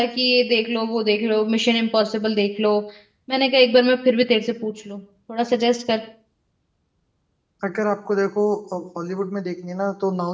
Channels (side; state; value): both; identical; correlation 1.00